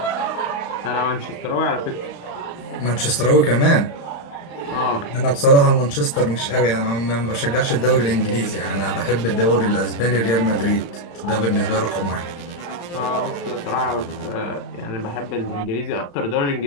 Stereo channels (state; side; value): late; right; 35 ms